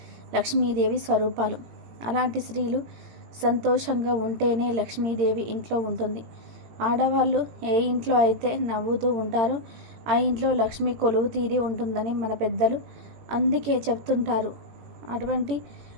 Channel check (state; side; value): late; left; 17 ms